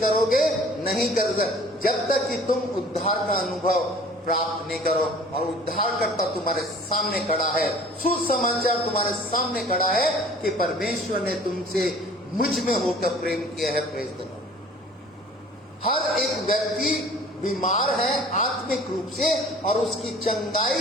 नहीं करोगे, जब तक कि तुम उद्धार का अनुभव प्राप्त नहीं करो। और उद्धारकर्ता तुम्हारे सामने खड़ा है, सुसमाचार तुम्हारे सामने खड़ा है कि परमेश्वर ने तुमसे मुझ में होकर प्रेम किया है। Praise the Lord. हर एक व्यक्ति बीमार है आत्मिक रूप से और उसकी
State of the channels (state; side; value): normal; both; correlation 0.48